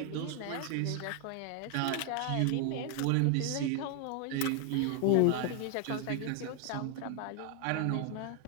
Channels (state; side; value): different; both; correlation 0.00